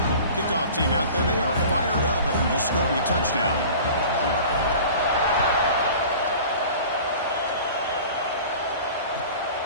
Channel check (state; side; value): inverted; both; correlation -0.41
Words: Kickoff team out there, they are fired up after just scoring a touchdown.